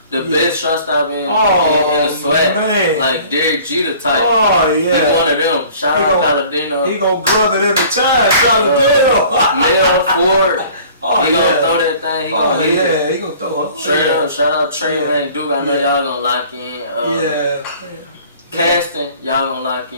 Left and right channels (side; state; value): both; inverted; correlation -0.50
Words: The best shortstop in the SWAC, man. Like Derek Jeter type. Oh, yeah. He one of them. Shout out Palladino. He gonna glove it every time. Palladino. Mel Ford. He gonna throw that thing. He gonna hit it. He gonna throw it. Straight up. Shout out Trey and Duke. I know y'all gonna lock in. Casting, y'all gonna lock